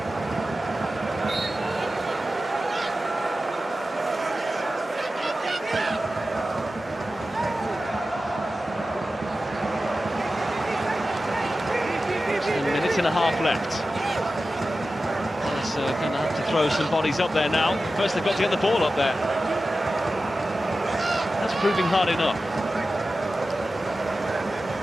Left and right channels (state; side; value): normal; both; correlation 0.94